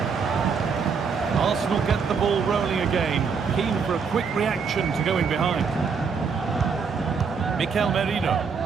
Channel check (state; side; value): quieter; left; 5.7 dB